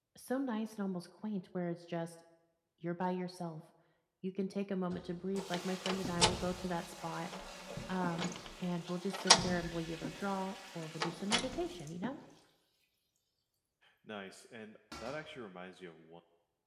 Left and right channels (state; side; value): identical; both; correlation 1.00